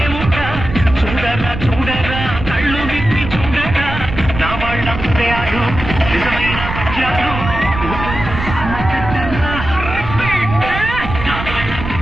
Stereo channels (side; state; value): right; noise; rumble, 7 dB below the sound